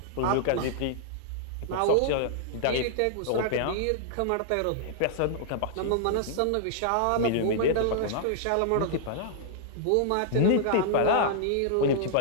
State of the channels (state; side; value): different; both; correlation -0.01